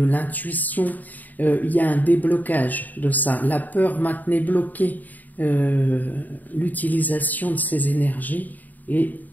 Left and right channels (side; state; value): right; late; 0.083 ms